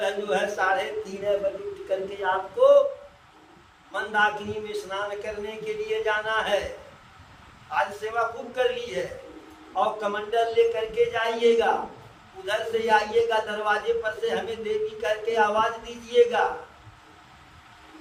जो है 3:30 बजे उठ करके आपको मंदाकिनी में स्नान करने के लिए जाना है। आज सेवा खूब कर ली है और कमंडल ले करके जाइएगा, उधर से आइएगा, दरवाजे पर से हमें देवी करके आवाज दीजिएगा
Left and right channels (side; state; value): both; identical; correlation 1.00